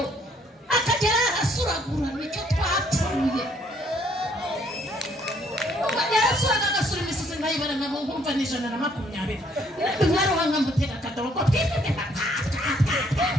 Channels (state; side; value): normal; both; correlation 0.66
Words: akagera arasuragura nicyo twapfuye yarasuraga agasura imisozi nkayibara nkamo nkumva ni 120 mwaruha nkamutera akadobo ko